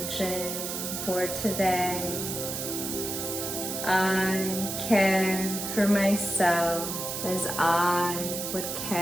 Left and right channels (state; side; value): noise; right; hiss, 4 dB below the sound